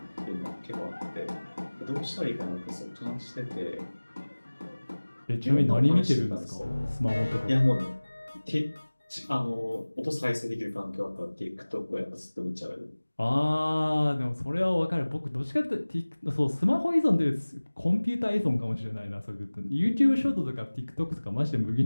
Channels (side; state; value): both; inverted; correlation -1.00